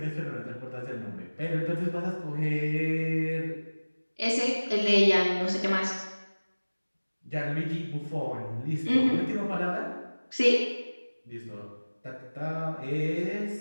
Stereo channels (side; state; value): both; inverted; correlation -1.00